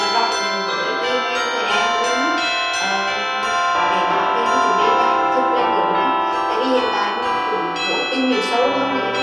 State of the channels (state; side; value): identical; both; correlation 1.00